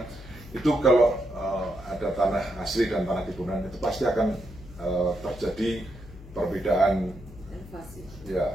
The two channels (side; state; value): left; noise; hum, 17 dB below the sound